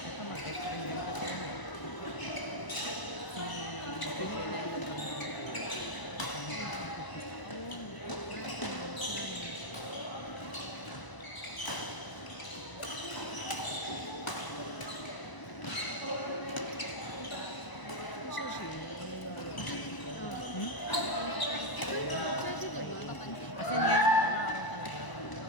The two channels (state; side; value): late; right; 1.0 ms